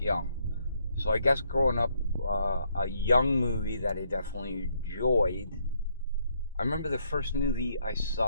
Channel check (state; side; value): inverted; both; correlation -0.72